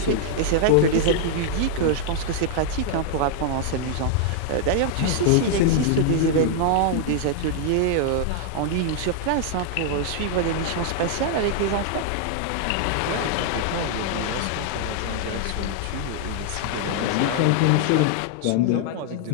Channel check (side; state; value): both; different; correlation 0.00